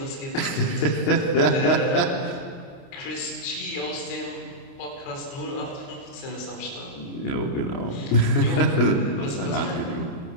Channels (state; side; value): late; right; 29 ms